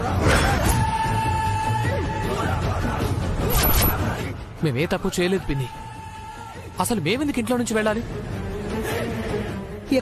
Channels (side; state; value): both; identical; correlation 1.00